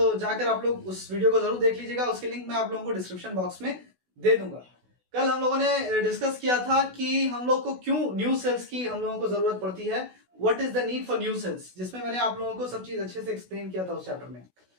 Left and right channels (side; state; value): left; late; 16 ms